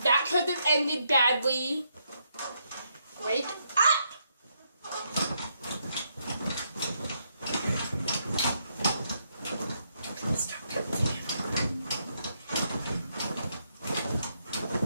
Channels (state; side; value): inverted; both; correlation -0.77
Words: That could have ended badly. Wake up!